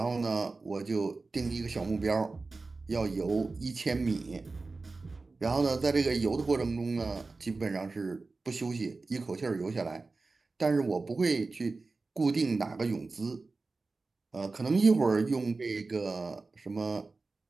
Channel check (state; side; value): quieter; left; 3.7 dB